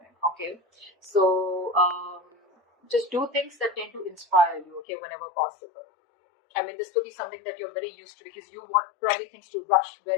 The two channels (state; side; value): drops out; right; at 4.8 s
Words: okay. So just do things that tend to inspire you, okay, whenever possible. This could be something that you're very used to, because you want probably things to rush